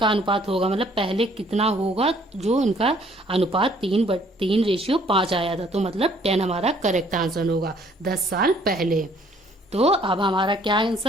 अनुपात होगा, मतलब पहले कितना होगा जो इनका अनुपात 3:5 आया था। तो मतलब 10 हमारा करेक्ट आंसर होगा 10 साल पहले। तो अब हमारा क्या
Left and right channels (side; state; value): both; normal; correlation 0.61